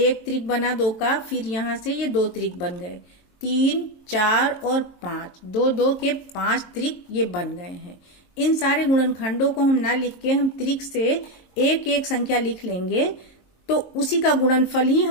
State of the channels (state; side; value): late; right; 22 ms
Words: त्रिक बना 2 का, फिर यहाँ से ये 2 त्रिक बन गए, 3, 4 और 5, 2 2 के 5 त्रिक ये बन गए हैं। इन सारे गुणनखंडों को हम ना लिख के हम त्रिक से एक एक संख्या लिख लेंगे तो उसी का गुणनफल ही